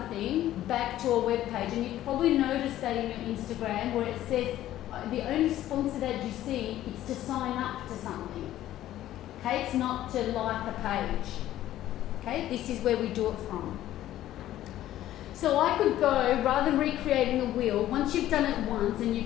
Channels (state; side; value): quieter; right; 13.4 dB